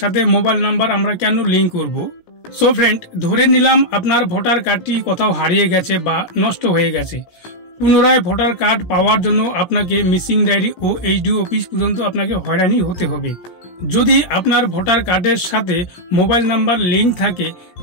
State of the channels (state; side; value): late; right; 17 ms